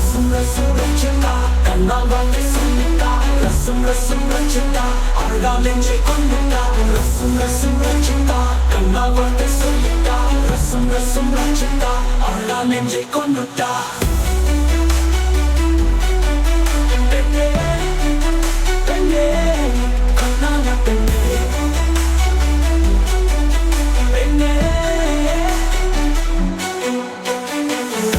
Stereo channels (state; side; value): identical; both; correlation 1.00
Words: ரசம் ரச்சிதா கண்ணால் வார்த்தை சொல்லிட்டா ரசம் ரசம் ரச்சிதா அவள்தான் நெஞ்சை கொண்டுட்டா ரசம் ரசம் ரச்சிதா கண்ணால் வார்த்தை சொல்லிட்டா ரசம் ரசம் ரச்சிதா அவள்தான் நெஞ்சை கொண்டுட்டா பெண்ணே பெண்ணே கண்ணான பெண்ணே